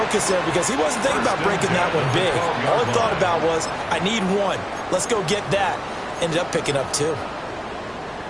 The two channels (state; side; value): identical; both; correlation 1.00